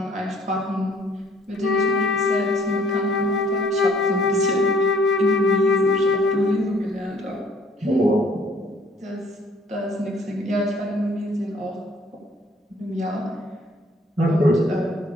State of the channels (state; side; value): normal; both; correlation 0.59